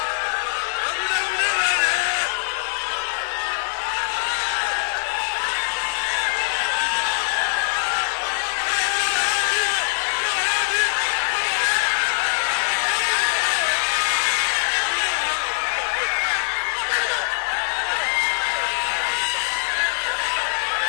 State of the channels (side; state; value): right; silent; 64 dB below the other